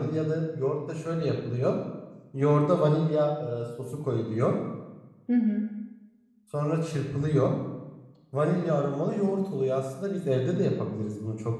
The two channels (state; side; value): identical; both; correlation 1.00